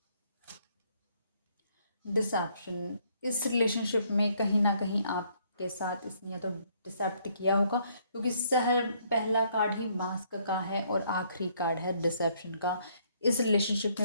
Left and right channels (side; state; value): both; inverted; correlation -0.67